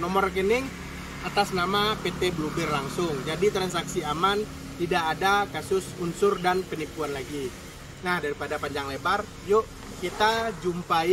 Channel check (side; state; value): both; identical; correlation 1.00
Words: rekening atas nama PT Bluebird langsung, jadi transaksi aman, tidak ada kasus unsur dan penipuan lagi. Nah, daripada panjang lebar, yuk kita